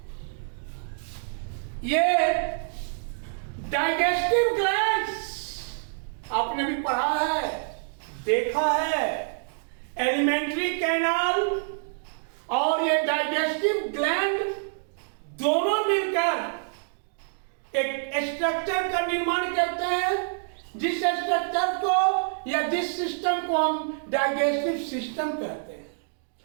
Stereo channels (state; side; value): silent; left; digital silence